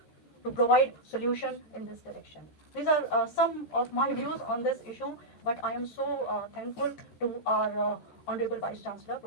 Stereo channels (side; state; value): right; late; 14 ms